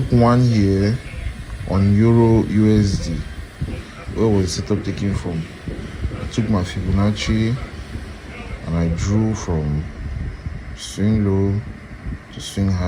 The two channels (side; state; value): both; identical; correlation 1.00